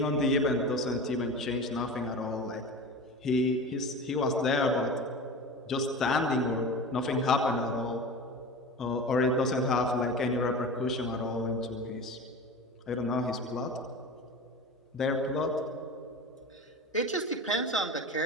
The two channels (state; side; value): normal; both; correlation 0.31